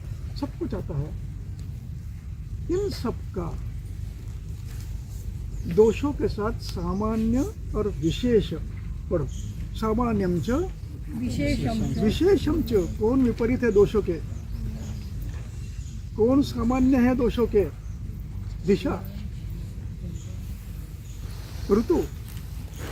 सब कुछ आता है। इन सब का दोषों के साथ सामान्य और विशेष पढ़ो। सामान्यम च विशेषम च विशेषम च, कौन विपरीत है दोषों के, कौन सामान्य है दोषों के? दिशा, ऋतु,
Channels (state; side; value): identical; both; correlation 1.00